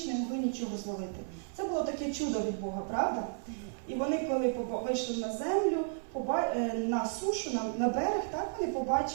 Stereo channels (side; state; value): left; silent; 56 dB below the other